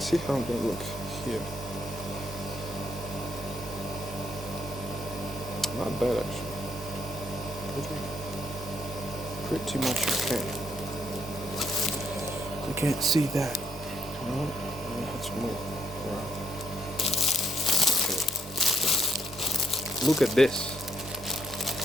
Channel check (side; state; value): both; normal; correlation 0.73